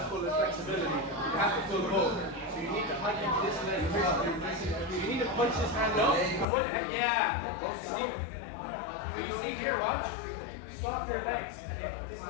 full of flexibility. You have to pull both. So you need to hike into this leg first. You need to punch this hand up. And what, yeah. Can you see here, watch? Swap your legs. This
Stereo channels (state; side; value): drops out; right; at 6.5 s